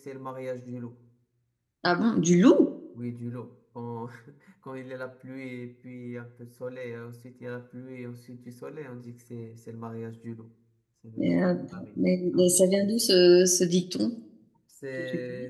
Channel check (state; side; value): identical; both; correlation 1.00